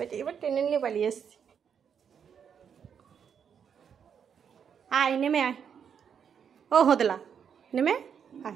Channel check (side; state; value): left; quieter; 7.5 dB